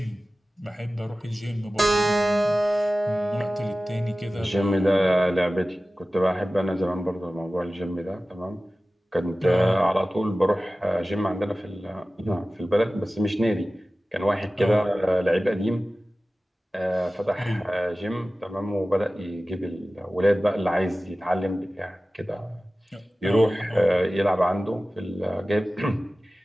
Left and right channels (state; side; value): normal; both; correlation 0.96